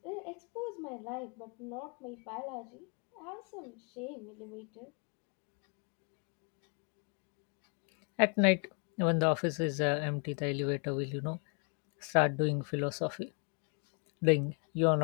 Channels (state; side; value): quieter; right; 39.3 dB